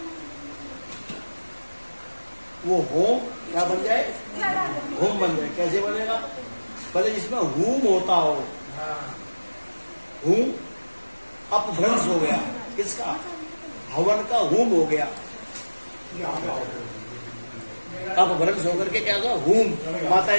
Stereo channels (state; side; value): inverted; both; correlation -1.00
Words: वो होम क्या बन जाए? होम बन जाए। कैसे बनेगा? पहले जिसमें होम होता हो, होम अपभ्रंश हो गया, किसका? हवन का होम हो गया, अपभ्रंश होकर के क्या हुआ? होम।